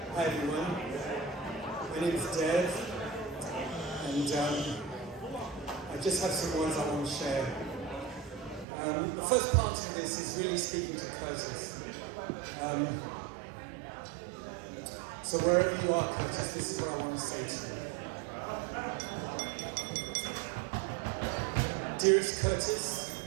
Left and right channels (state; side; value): drops out; left; at 8.7 s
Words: Hi everyone, my name is Dev, and I just have some words I want to share. The first part of this is really speaking to Curtis. So wherever you are, Curtis, this is what I want to say to you. Dearest Curtis,